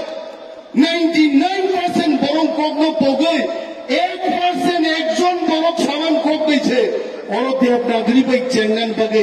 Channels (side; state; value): both; identical; correlation 1.00